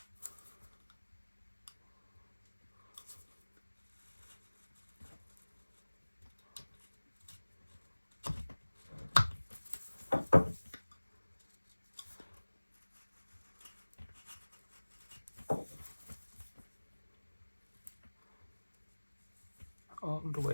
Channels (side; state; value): both; inverted; correlation -1.00